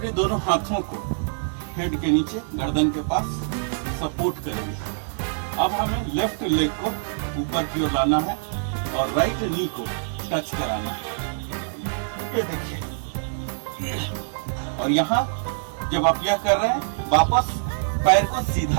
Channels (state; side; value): silent; left; digital silence